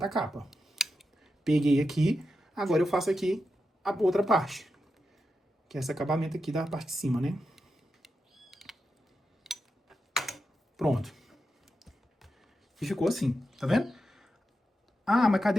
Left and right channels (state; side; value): normal; both; correlation 0.88